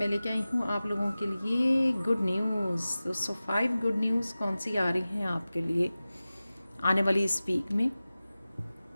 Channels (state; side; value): inverted; both; correlation -0.96